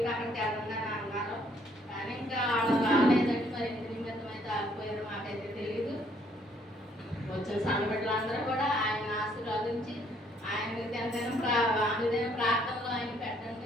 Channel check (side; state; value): both; normal; correlation 0.66